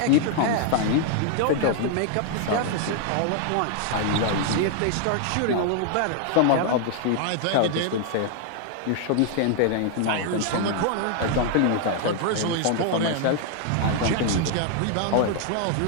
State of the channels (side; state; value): both; different; correlation 0.00